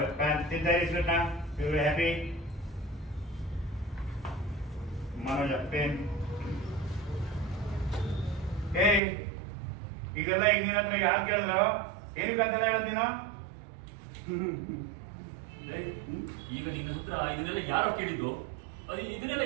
ತಿಂತಾರೆ ಸ್ವೀಟ್ ನ. ಇವರು ಹ್ಯಾಪಿ. ಮನೋಜ ಪೇನ್. ಏಯ್ ಇದೆಲ್ಲ ಈಗ ನಿನ್ನ ಹತ್ರ ಯಾರು ಕೇಳಿದ್ರು? ಏನಕ್ಕಂತೆಲ್ಲ ಹೇಳೋದು ನೀನು? ಈಗ ನಿನ್ನ ಹತ್ರ ಇದನ್ನೆಲ್ಲ ಯಾರೋ ಕೇಳಿದ್ದು? ಅದು ಇದನ್ನೆಲ್ಲ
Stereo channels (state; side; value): drops out; left; at 9.0 s